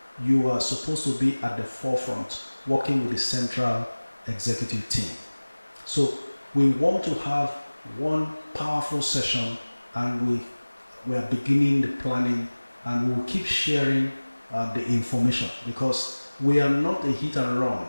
you are supposed to be at the forefront, working with the central executive team. So we want to have one powerful session, and we are beginning the planning, and we will keep sharing the information, because we are not a hit and run.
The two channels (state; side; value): inverted; both; correlation -1.00